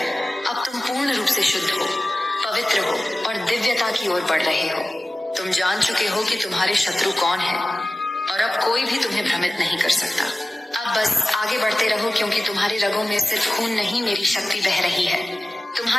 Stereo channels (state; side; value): normal; both; correlation 0.96